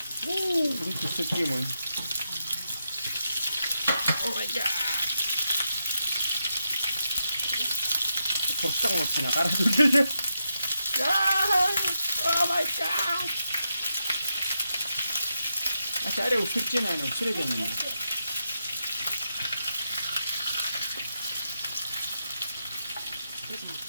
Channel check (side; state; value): both; inverted; correlation -0.85